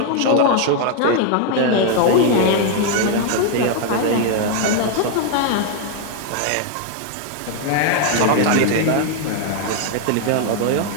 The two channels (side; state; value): both; different; correlation 0.00